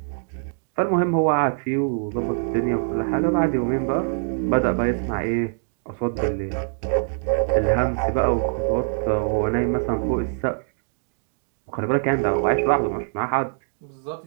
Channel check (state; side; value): silent; left; digital silence